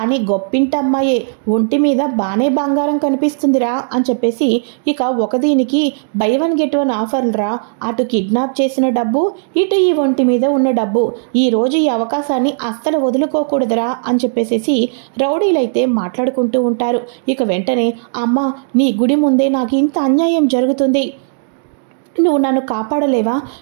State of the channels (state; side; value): silent; left; digital silence